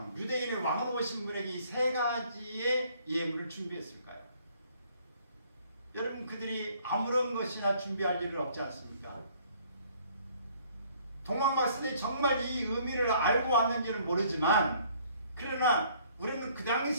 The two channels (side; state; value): both; inverted; correlation -0.60